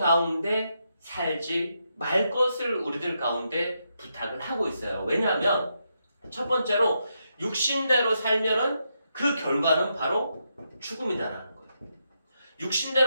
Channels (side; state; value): both; inverted; correlation -0.82